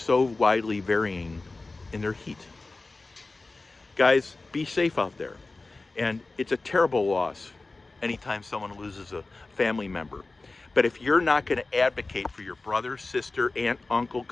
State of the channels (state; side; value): quieter; right; 3.4 dB